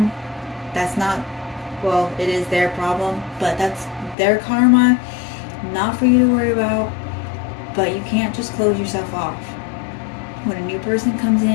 That's not, well, it is their problem, but that's their karma, not for you to worry about. But you can't just close yourself off. When a new person comes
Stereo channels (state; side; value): drops out; right; at 4.2 s